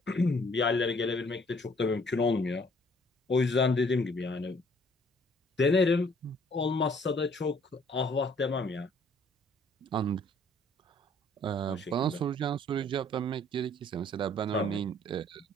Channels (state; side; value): normal; both; correlation 0.60